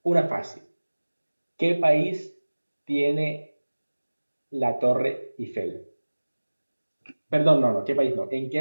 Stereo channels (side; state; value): both; inverted; correlation -1.00